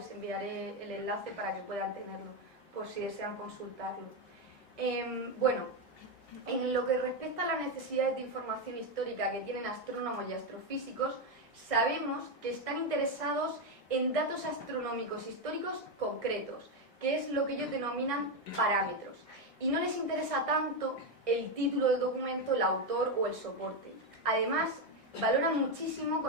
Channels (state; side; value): normal; both; correlation 0.07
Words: enviaré el enlace para que puedan tenerlo, por si desean consultarlo. En lo que respecta a las necesidades de información histórica que tienen astrónomos y astrofísicos, sabemos que están interesados en datos astronómicos históricos concretos, que es lo que ellos denominan parámetros, y no les interesa tanto el título del documento, el autor o el soporte. Además, valoran muchísimo